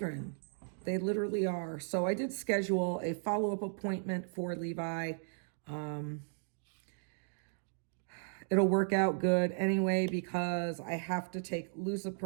They literally are. So I did schedule a follow-up appointment for Levi. It'll work out good anyway because I have to take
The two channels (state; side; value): silent; left; digital silence